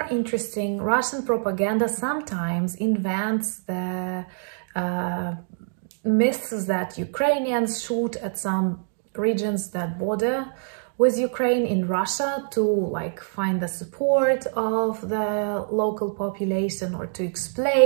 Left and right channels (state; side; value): silent; left; digital silence